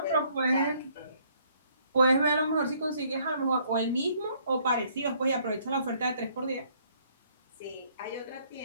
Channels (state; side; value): inverted; both; correlation -0.64